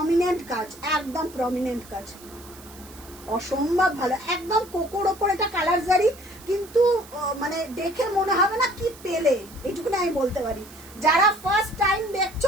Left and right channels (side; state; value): right; noise; hiss, 20 dB below the sound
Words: কাজ, একদম প্রমিনেন্ট কাজ, অসম্ভব ভালো, একদম কোকোর ওপর এটা কালার জারি, কিন্তু মানে দেখে মনে হবে না কি পেলে, এইটুকুনি আমি বলতে পারি। যারা ফার্স্ট টাইম